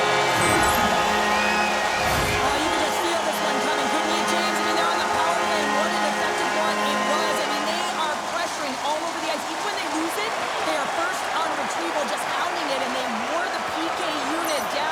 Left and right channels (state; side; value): identical; both; correlation 1.00